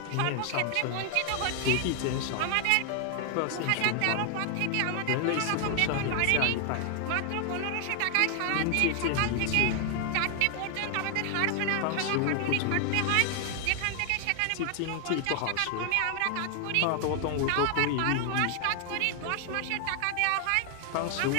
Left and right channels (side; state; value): both; different; correlation 0.00